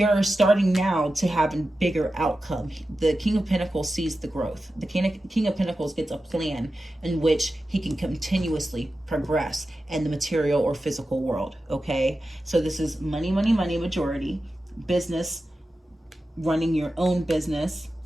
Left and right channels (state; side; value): normal; both; correlation 0.92